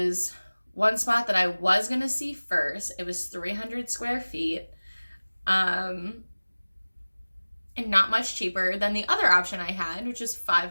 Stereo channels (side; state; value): both; inverted; correlation -1.00